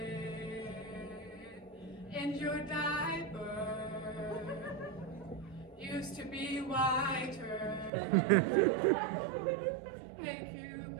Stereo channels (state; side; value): drops out; left; at 7.9 s